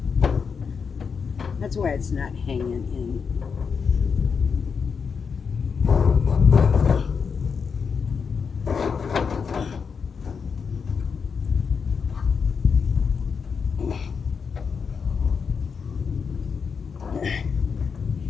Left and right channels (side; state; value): right; quieter; 5.9 dB